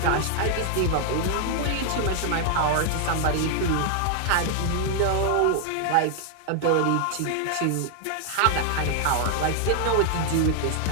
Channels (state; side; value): different; both; correlation 0.00